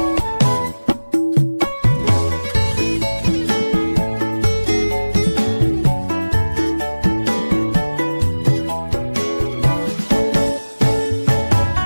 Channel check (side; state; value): both; inverted; correlation -1.00